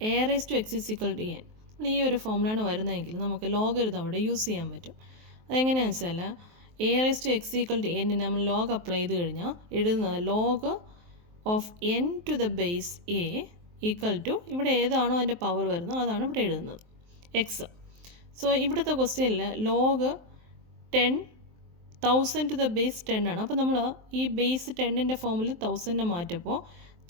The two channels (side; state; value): left; late; 23 ms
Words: raised to x is equal to n. ഈ ഒരു ഫോമുലാണ് വരുന്നതെങ്കിൽ നമുക്ക് logarithm അവിടെ use ചെയ്യാൻ പറ്റും. അതെങ്ങനെയാണെന്ന് വെച്ചാൽ a raise to x equal to n നമ്മൾ ലോഗ് അപ്ലൈ ചെയ്ത് കഴിഞ്ഞാൽ എഴുതുന്നത് log of n to the base a equal to ഇവിടെ ഏതാണോ അതിൻ്റെ പവർ വരുന്നത് അതാണ് ഇവിടെ എഴുതുന്നത് എക്സ്. സോ ഇവിടുത്തെ ക്വസ്റ്റ്യനിൽ ലോഗ് 1000 ടു ദ ബേസ് 10 ആണ്. അപ്പോൾ നമ്മൾ ഈ ബേസ് 10ൻ്റെ ഫോമിൽ 1000 മാറ്റപ്പോൾ